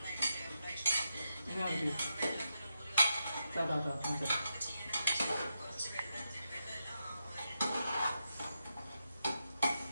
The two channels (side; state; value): both; inverted; correlation -0.86